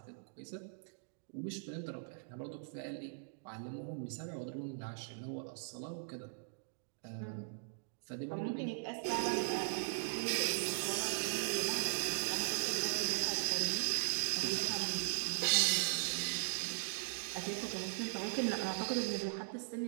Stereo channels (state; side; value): silent; left; digital silence